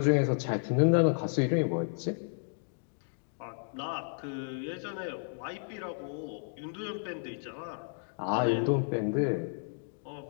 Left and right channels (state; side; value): silent; right; digital silence